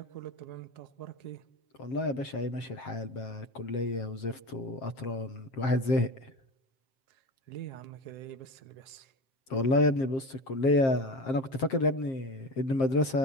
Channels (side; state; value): right; late; 7.5 ms